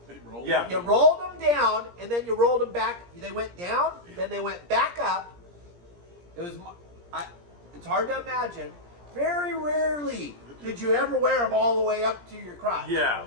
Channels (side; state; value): left; late; 17 ms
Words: Yeah. rolled them down, and then you rolled them back. They went down, then they went back up. It's hard to imagine. Very rarely did you ever wear them all the way up to your crotch. Yeah.